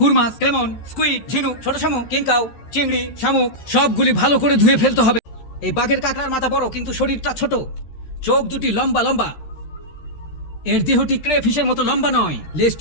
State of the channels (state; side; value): late; right; 13 ms